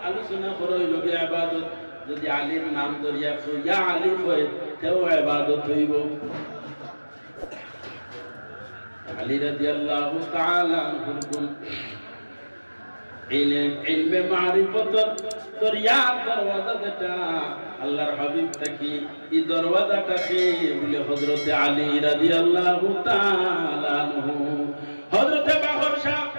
আলোচনা করই লগে ইবাদত যদি আলীর নাম ধরিয়া কই ইয়া আলী কই তেও ইবাদত হইব আলী রাদিয়াল্লাহু তাআলা আনহু কোন ইলমে মারিফত দরিয়া দরওয়াজা যেটা আল্লাহর হাবিব তাকি এই দরওয়াজাটাকে বলে হযরত আলী রাদিয়াল্লাহু তাআলা আনহু হযরত বাহর শাহ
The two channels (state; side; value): inverted; both; correlation -1.00